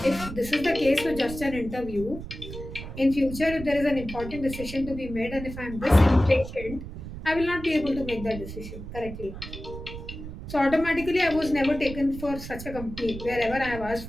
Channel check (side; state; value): right; noise; rumble, 10 dB below the sound